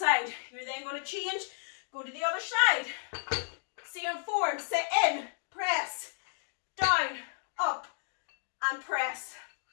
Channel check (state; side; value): silent; right; 56 dB below the other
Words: You're then going to change, go to the other side. Same form, sit in, press. Down, up, and press.